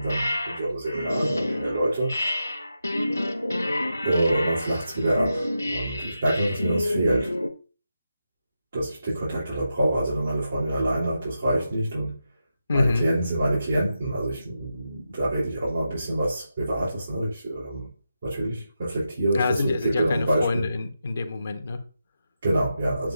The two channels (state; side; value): inverted; both; correlation -0.88